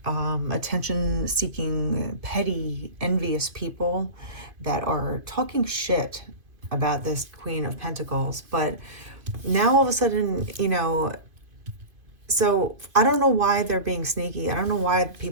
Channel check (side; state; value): left; late; 2.5 ms